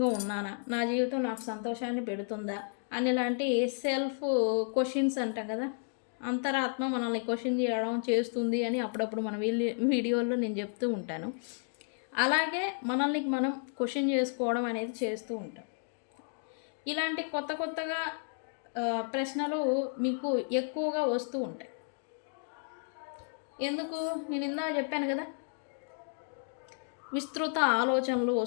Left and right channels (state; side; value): silent; right; 56 dB below the other